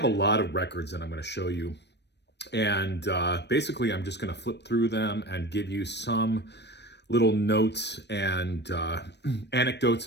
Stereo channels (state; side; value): late; right; 0.50 ms